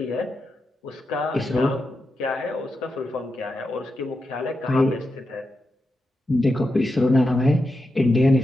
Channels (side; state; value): both; normal; correlation 0.88